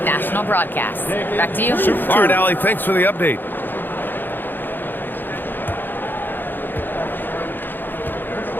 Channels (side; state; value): right; late; 0.093 ms